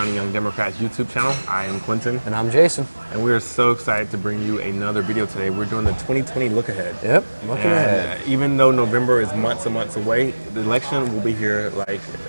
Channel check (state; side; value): inverted; both; correlation -1.00